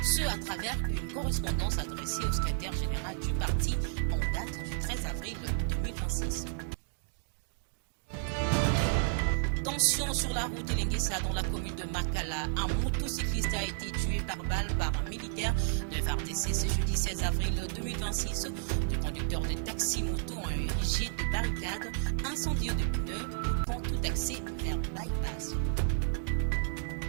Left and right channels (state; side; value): silent; left; digital silence